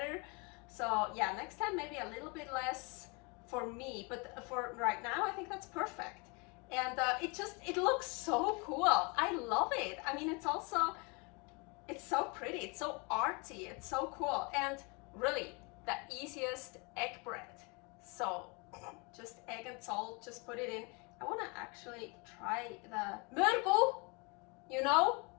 So yeah, next time maybe a little bit less for me, but for right now I think that's perfect. And it looks so cool. I love it. I mean, it's so pretty, it's so artsy, it's so cool, and really the easiest egg bread. So just egg and salt, just put it in. I want to actually try the mörgel, you know.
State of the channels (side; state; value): right; quieter; 30.6 dB